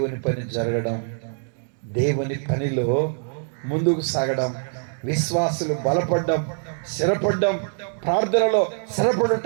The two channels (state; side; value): silent; left; 63 dB below the other